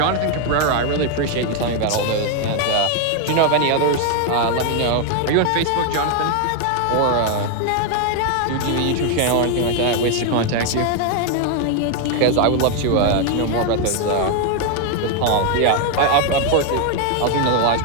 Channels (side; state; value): both; different; correlation 0.01